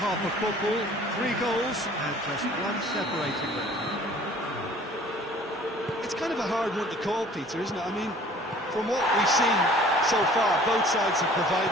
half of football, 3 goals and just one separating them. It's kind of a hard one to call, Peter, isn't it? I mean, from what we've seen so far, both sides have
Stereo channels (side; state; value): both; normal; correlation 0.51